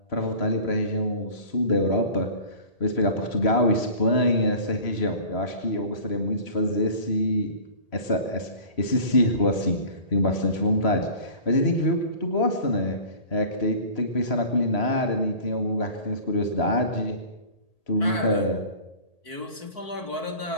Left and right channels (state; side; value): late; right; 1.8 ms